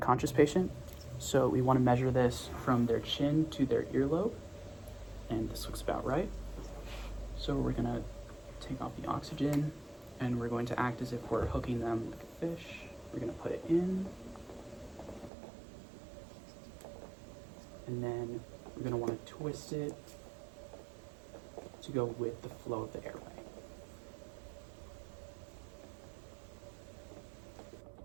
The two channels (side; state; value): left; drops out; at 15.3 s